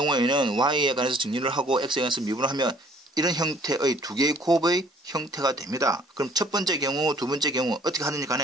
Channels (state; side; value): normal; both; correlation 0.57